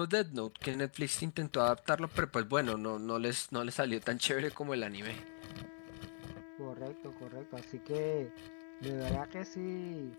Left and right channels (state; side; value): silent; right; digital silence